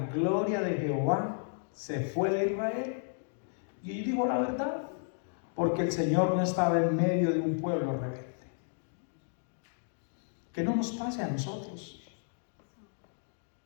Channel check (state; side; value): silent; right; digital silence